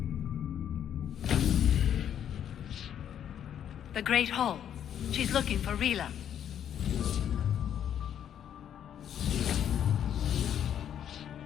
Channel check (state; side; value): quieter; right; 9.6 dB